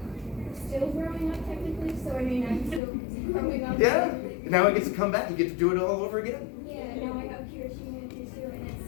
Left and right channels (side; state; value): right; drops out; at 2.8 s